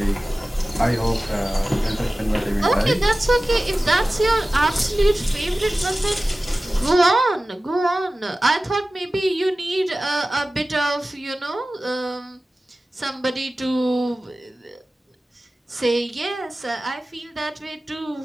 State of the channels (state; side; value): normal; both; correlation 0.96